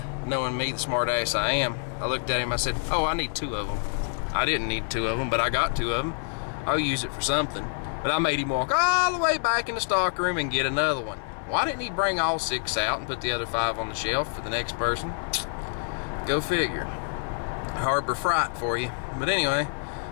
knowing me, the smart ass I am, I looked at him, I said, oh, I need 2 of them. I didn't need 2 of them, but I got 2 of them. I'll use it for something. But I made him walk all the way back in the stock room and get another one. Why didn't he bring all 6 out and put the other 5 on the shelf for the next person? Go figure. Harbor Freight for you. But anyway,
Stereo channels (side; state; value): right; silent; digital silence